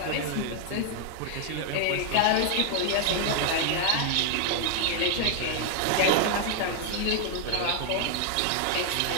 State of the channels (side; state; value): both; different; correlation 0.00